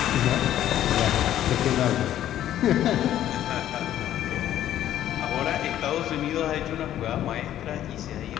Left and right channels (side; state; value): right; quieter; 12.0 dB